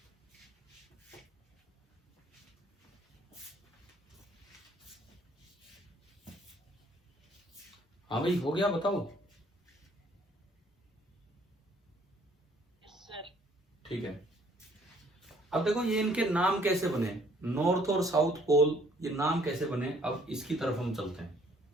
हाँ भाई, हो गया, बताओ। ठीक है। अब देखो ये इनके नाम कैसे बने, नॉर्थ और साउथ पोल, ये नाम कैसे बने। अब इसकी तरफ हम चलते हैं।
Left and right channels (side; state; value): both; normal; correlation 0.61